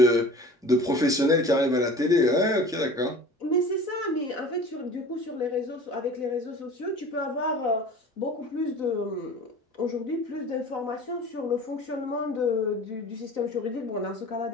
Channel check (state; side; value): normal; both; correlation 0.41